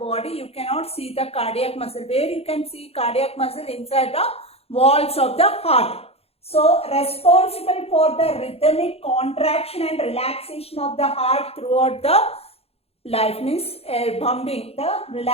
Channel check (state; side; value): late; right; 0.29 ms